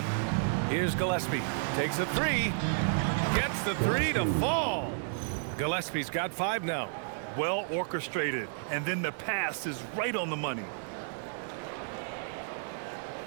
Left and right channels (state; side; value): silent; left; digital silence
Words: Here's Gillespie. Takes a 3. Gets the 3 to fall. Gillespie's got 5 now. Well orchestrated. And then the pass is right on the money.